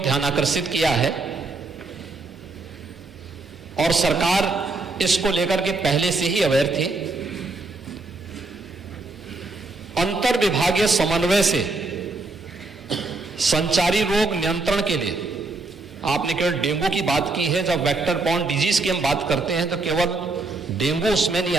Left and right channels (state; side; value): quieter; left; 3.5 dB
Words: ध्यान आकर्षित किया है और सरकार इसको लेकर के पहले से ही अवेयर थी। अंतर विभागीय समन्वय से संचारी रोग नियंत्रण के लिए आपने केवल डेंगू की बात की है। जब वेक्टर बॉर्न डिजीज की हम बात करते हैं तो केवल डेंगू उसमें नहीं